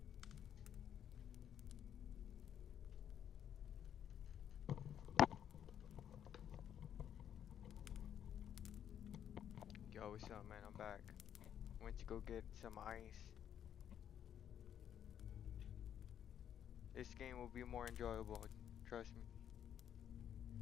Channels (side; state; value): right; quieter; 9.5 dB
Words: Yo, what's up, man? I'm back. Went to go get some ice. This game will be more enjoyable, trust me.